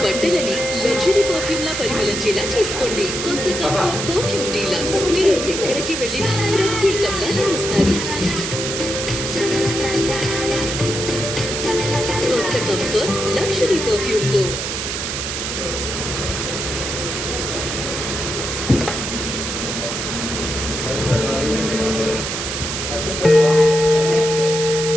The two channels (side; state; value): right; noise; hiss, 4 dB below the sound